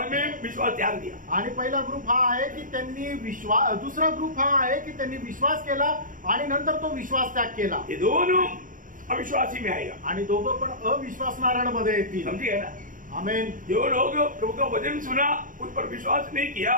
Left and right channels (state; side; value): late; left; 0.39 ms